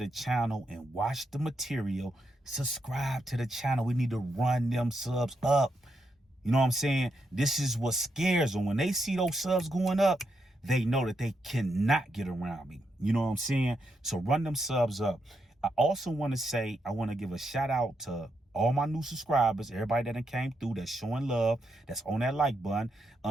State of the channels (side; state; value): both; normal; correlation 0.82